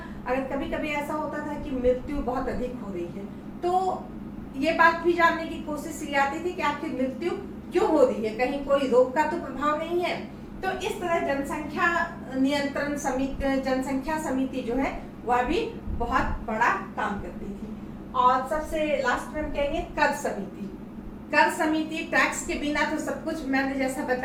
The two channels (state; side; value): identical; both; correlation 1.00